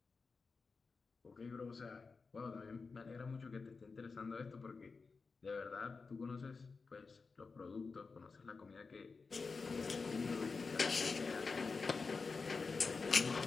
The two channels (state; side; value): quieter; right; 4.5 dB